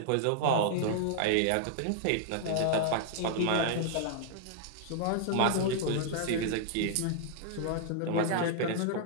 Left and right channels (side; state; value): both; different; correlation -0.01